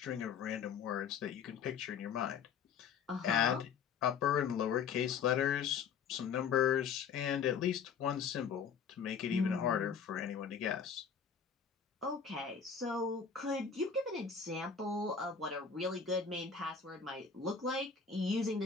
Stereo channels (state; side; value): quieter; right; 6.5 dB